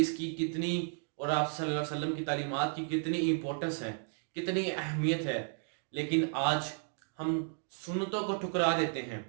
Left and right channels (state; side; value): silent; left; 55 dB below the other